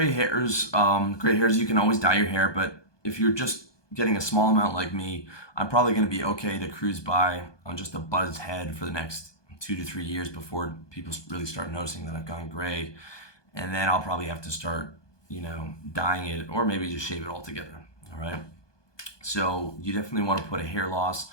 hairs. Gray hairs, you can always dye your hair, but if you're just getting a small amount like me, I'm probably going to be okay to cruise by on just a buzzed head for the next 2 to 3 years before people really start noticing that I've gone gray. And then I'll probably have to start, dyeing it or maybe just shave it altogether. All right. So you definitely want to put a hair loss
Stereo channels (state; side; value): late; right; 1.2 ms